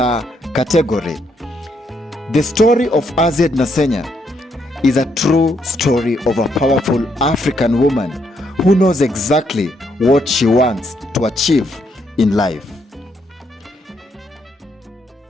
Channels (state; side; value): normal; both; correlation 0.75